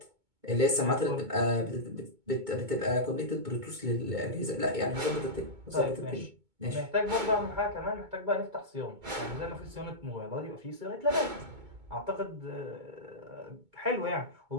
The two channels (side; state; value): left; late; 2.2 ms